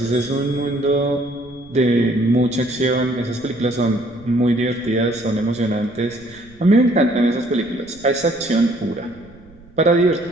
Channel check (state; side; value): noise; right; rumble, 25 dB below the sound